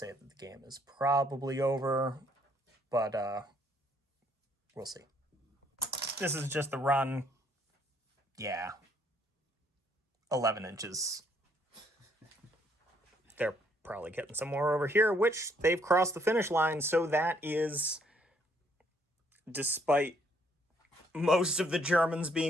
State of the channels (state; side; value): normal; both; correlation 0.67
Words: that the game is probably over, but we'll see. This is just the run. Yeah. 11 inches. They're probably getting some more over here, which they've crossed the finish line, so that is, despite most of the Germans